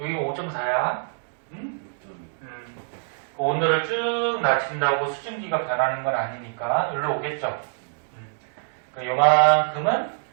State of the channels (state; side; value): silent; left; digital silence